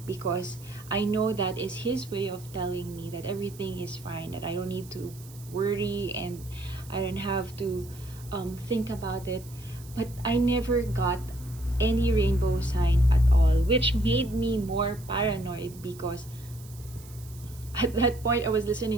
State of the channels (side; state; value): right; noise; hiss, 21 dB below the sound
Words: because I know that is His way of telling me that everything is fine, that I don't need to worry and I don't have to think about it. But I never got any rainbow sign at all, which made me more paranoid, because at that point I was